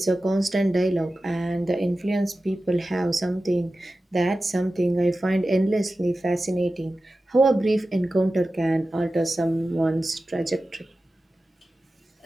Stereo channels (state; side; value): normal; both; correlation 0.94